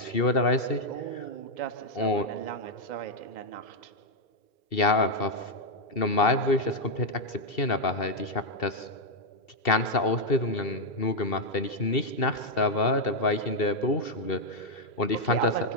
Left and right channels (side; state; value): right; late; 2.7 ms